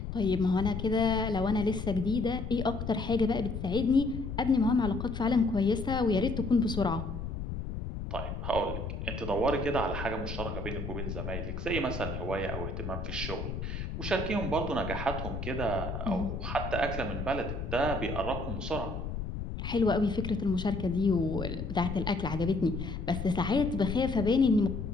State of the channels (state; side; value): noise; left; rumble, 5 dB below the sound